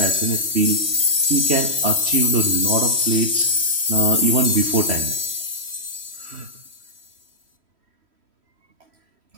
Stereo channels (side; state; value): left; late; 3.1 ms